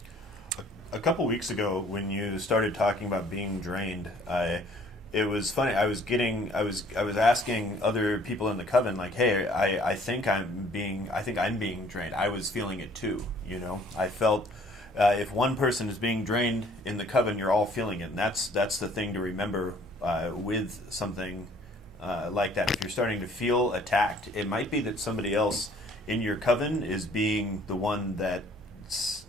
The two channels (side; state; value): both; normal; correlation 0.57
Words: A couple weeks ago, when you started talking about being drained, it was funny. I was asking other people in the coven, like, "Hey, I think I'm being drained." I was feeling it too. I felt if one person is being drained in the coven, you're all feeling it, and that's the thing to remember with something like that. If you're starting to feel attacked, it might be that somebody else in your coven is being the one that's